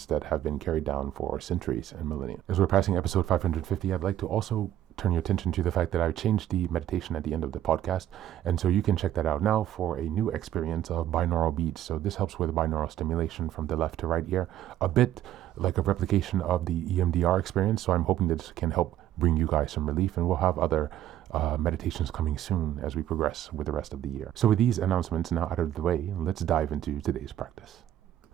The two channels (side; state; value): left; quieter; 12.3 dB